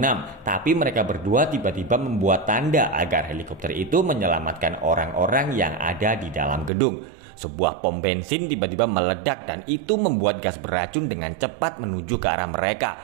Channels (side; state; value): left; drops out; at 6.7 s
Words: tapi mereka berdua tiba-tiba membuat tanda agar helikopter itu menyelamatkan orang-orang yang ada di dalam gedung. Sebuah pom bensin tiba-tiba meledak dan itu membuat gas beracun dengan cepat menuju ke arah